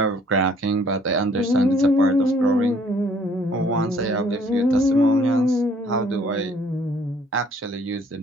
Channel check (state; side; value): normal; both; correlation 0.60